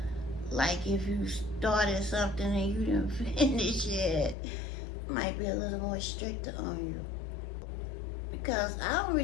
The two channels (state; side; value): drops out; right; at 4.4 s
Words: Like if you started something and you didn't finish it, might be a little more stricter on you. Because I don't